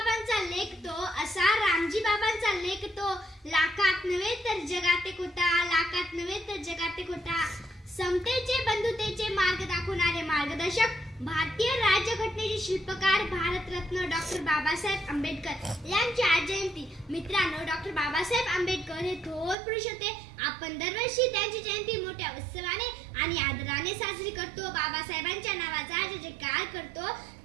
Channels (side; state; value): left; drops out; at 19.6 s